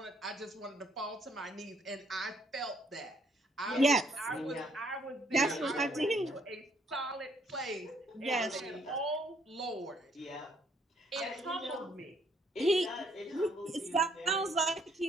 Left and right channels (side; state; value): both; normal; correlation 0.68